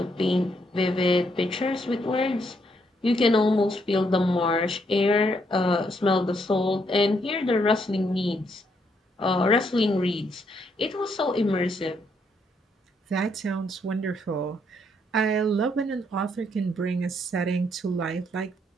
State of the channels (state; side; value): normal; both; correlation 0.74